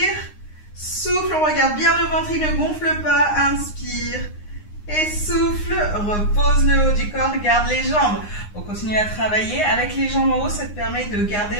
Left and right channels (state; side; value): late; right; 9.7 ms